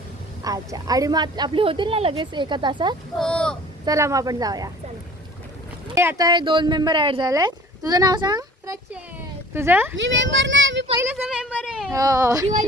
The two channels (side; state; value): both; normal; correlation 0.46